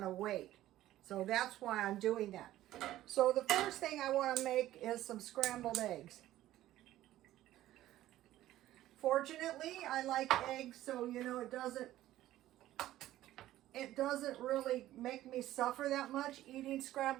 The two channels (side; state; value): left; quieter; 14.3 dB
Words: of weight. So that's why I'm doing that. So the first thing I want to make is some scrambled eggs. Fortunately, I like eggs, so you know it doesn't really make me suffer that much eating